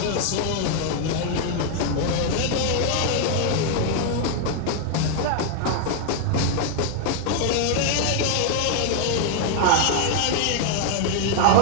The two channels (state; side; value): different; both; correlation 0.00